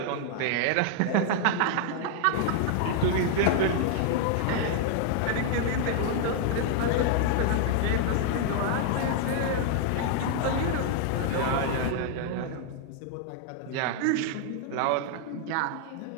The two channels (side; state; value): both; different; correlation 0.00